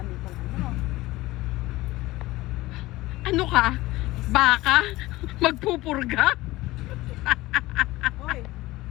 ito. Ano? Ano ka? Baka? Magpupurga? Hoy,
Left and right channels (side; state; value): right; quieter; 18.7 dB